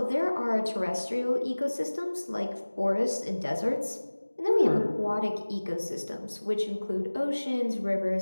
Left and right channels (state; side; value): inverted; both; correlation -1.00